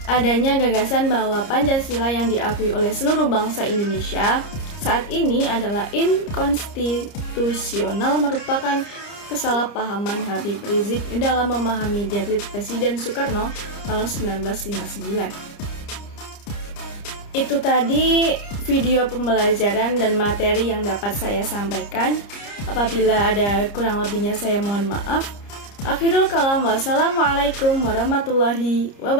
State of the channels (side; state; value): right; late; 30 ms